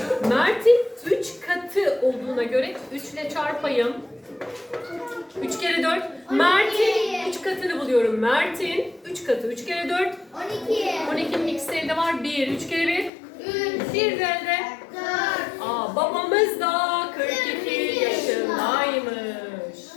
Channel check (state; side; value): drops out; right; at 13.1 s